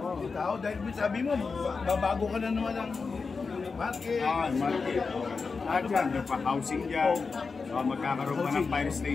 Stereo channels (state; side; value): quieter; right; 4.7 dB